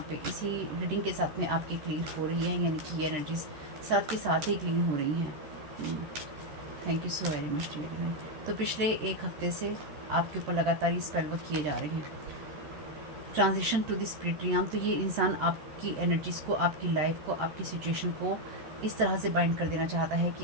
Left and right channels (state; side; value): late; left; 13 ms